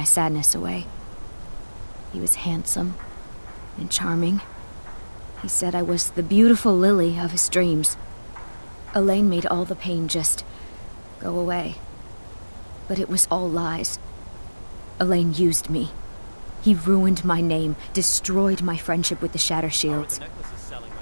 sadness away. He was handsome and charming. He said I was the beautiful lily of his dreams. Elaine made all the pain just go away. But it was all lies. Elaine used me. He ruined my name, destroyed my friendship with the Shattershields.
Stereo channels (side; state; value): both; inverted; correlation -1.00